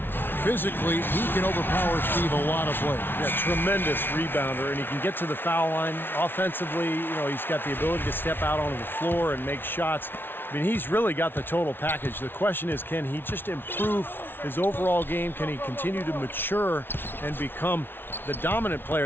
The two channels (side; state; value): right; late; 0.10 ms